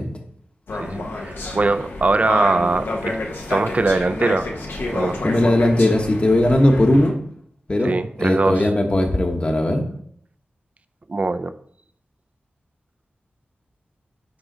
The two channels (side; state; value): both; normal; correlation 0.92